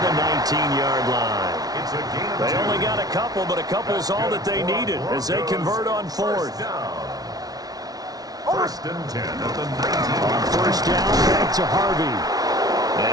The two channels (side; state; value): left; late; 0.18 ms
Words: the 19-yard line. They only got a couple, but a couple's all that they needed as they convert on 4th. 1st and 10 at the 19. On first down, back to Harvey.